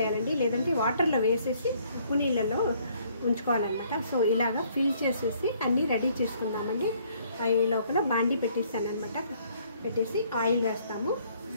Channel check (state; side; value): inverted; both; correlation -0.64